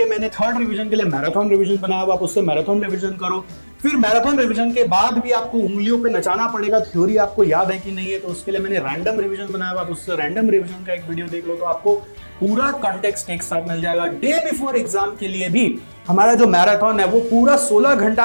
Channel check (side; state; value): both; inverted; correlation -1.00